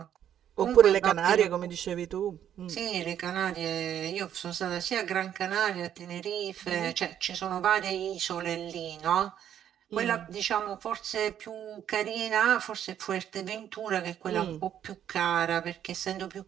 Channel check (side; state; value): left; quieter; 10.1 dB